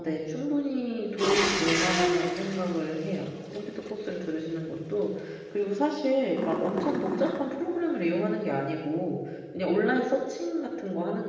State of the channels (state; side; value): identical; both; correlation 1.00